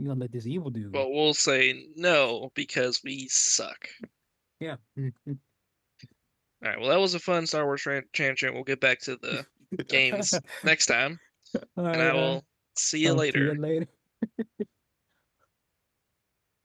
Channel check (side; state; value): both; identical; correlation 1.00